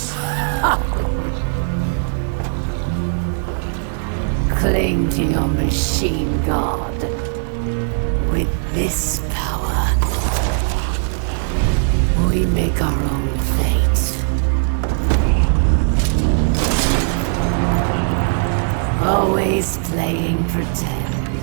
Cling to your machine god. With this power, we make our own fate. Always playing pretend.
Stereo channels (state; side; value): silent; left; 67 dB below the other